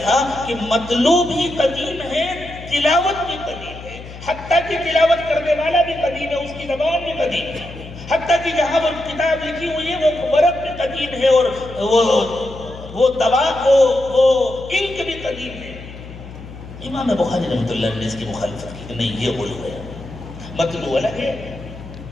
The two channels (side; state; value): left; noise; hum, 14 dB below the sound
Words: تھا کہ مطلوب بھی قدیم ہے، تلاوت بھی قدیم ہے، حتیٰ کہ تلاوت کرنے والا بھی قدیم ہے، اس کی زبان بھی قدیم ہے، حتیٰ کہ جہاں وہ کتاب لکھی ہوئی ہے وہ ورق بھی قدیم ہے، اور وہ دوا، وہ انک بھی قدیم ہے۔ امام بخاری رحمۃ اللہ نے اس کی مخالفت کی کہ نہیں، یہ غلو ہے، مطلوب الگ ہے،